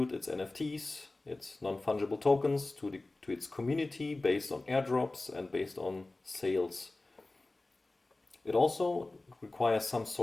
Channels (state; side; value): quieter; right; 3.0 dB